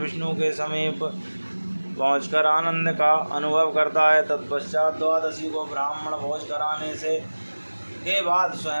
के समीप पहुंचकर आनंद का अनुभव करता है। तत्पश्चात द्वादशी को ब्राह्मण भोज कराने से के बाद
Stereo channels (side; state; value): both; inverted; correlation -1.00